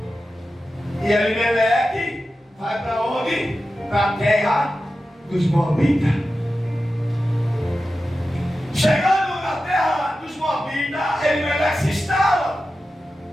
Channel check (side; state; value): both; normal; correlation 0.93